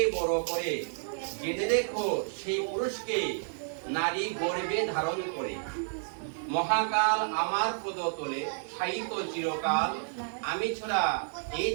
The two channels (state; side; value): silent; left; digital silence